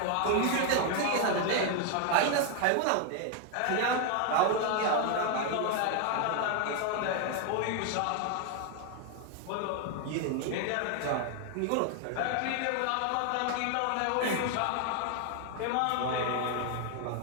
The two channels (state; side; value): different; both; correlation 0.01